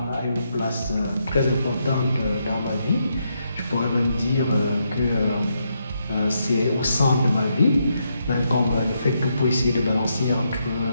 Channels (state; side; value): inverted; both; correlation -0.80